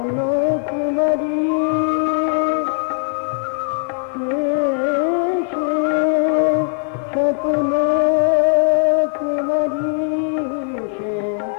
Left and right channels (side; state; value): right; silent; 65 dB below the other